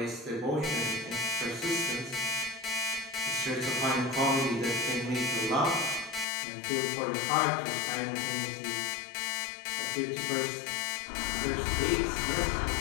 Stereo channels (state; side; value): drops out; right; at 6.2 s